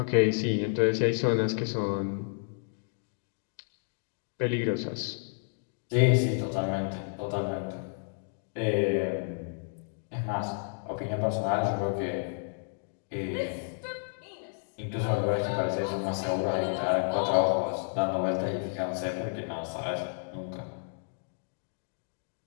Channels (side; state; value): right; silent; digital silence